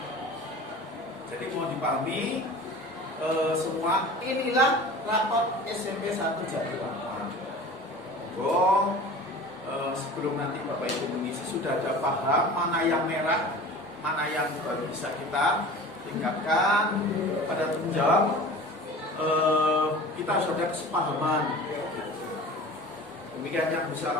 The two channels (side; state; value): both; normal; correlation 0.39